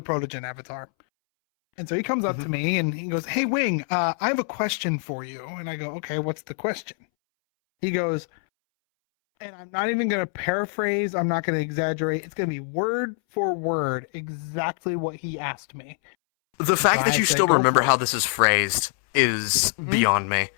avatar. And so he comes up to me and he goes, "Hey Wing, I have a question for you." And I go, "Okay, what's the question?" He goes, and I'm not even going to paraphrase, I'm not going to exaggerate. It's going to be word for word exactly what he asked me. The fact so that I you said, still "Go remember for it." how this is phrased is beyond me.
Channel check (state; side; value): silent; right; 62 dB below the other